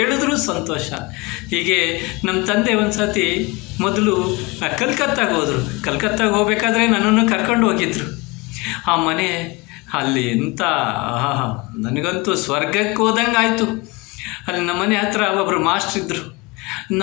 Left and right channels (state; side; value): quieter; right; 25.2 dB